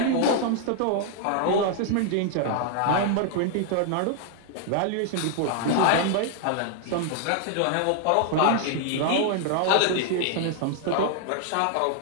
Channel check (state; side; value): different; both; correlation 0.00